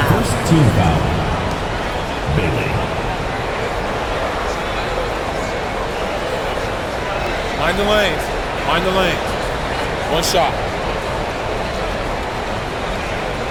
First team foul. Bailey. Mind the lanes. Mind the lanes. 1 shot.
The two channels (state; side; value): identical; both; correlation 1.00